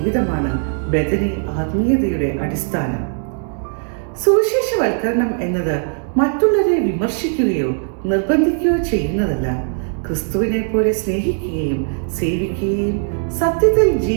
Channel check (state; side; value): silent; left; 60 dB below the other